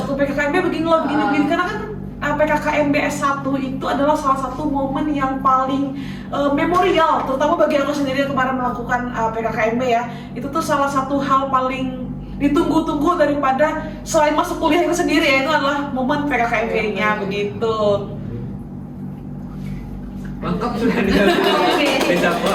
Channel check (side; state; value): both; identical; correlation 1.00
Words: PKKMB begini karena kan PKKMB S1 itu adalah salah satu momen yang paling memorial, terutama bagi aku sendiri yang kemarin melakukan PKKMB ya. Itu tuh salah satu hal paling ditunggu-tunggu daripada selain masuk kuliah itu sendiri ya, itu adalah momen PKKMB-nya begitu. Lengkap sudah bisa